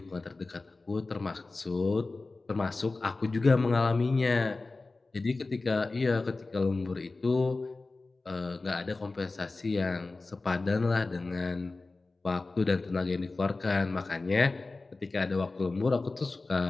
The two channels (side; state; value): right; quieter; 3.5 dB